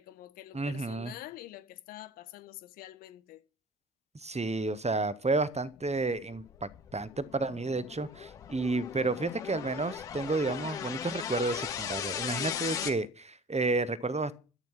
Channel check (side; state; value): both; normal; correlation 0.43